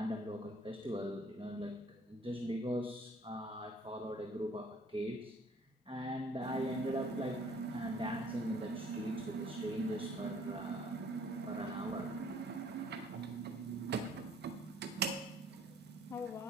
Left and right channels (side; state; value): both; normal; correlation 0.58